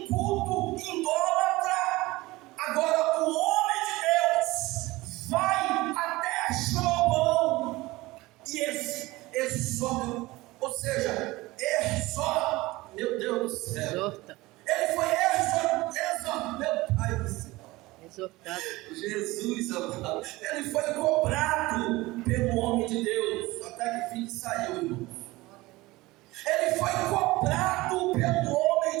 culto idólatra. Agora o homem de Deus vai até Jeroboão e exorta, ou seja, exorta, meu Deus do céu. Exorta. Ele foi exortado, meu Pai do céu. Exortado. Jesus amado. Ele foi cobrado pelo homem de Deus, até que fim saiu, irmão. Ele foi cobrado pelo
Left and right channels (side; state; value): left; quieter; 20.2 dB